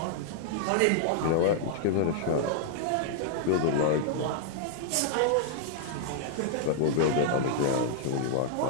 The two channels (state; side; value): different; both; correlation -0.01